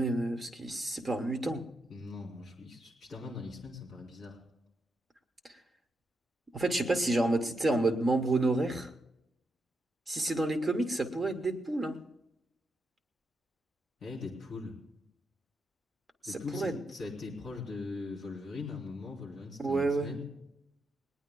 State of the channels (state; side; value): normal; both; correlation 0.83